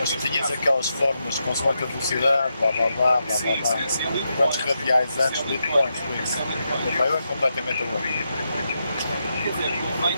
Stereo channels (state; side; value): inverted; both; correlation -0.84